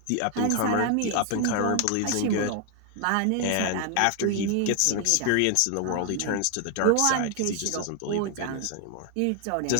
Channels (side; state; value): both; different; correlation 0.00